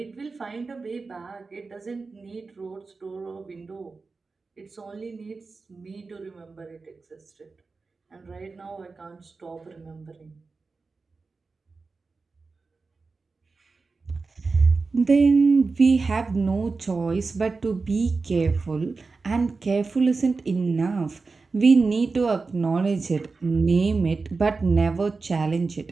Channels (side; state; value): left; quieter; 4.1 dB